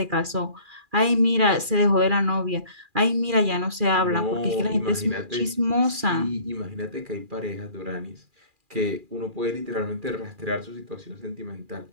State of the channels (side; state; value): left; late; 2.4 ms